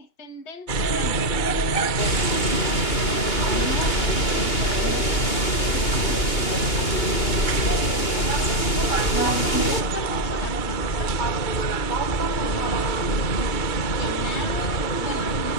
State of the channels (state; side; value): late; right; 2.8 ms